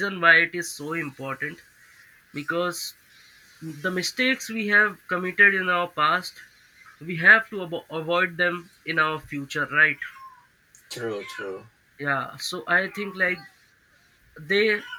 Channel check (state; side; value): identical; both; correlation 1.00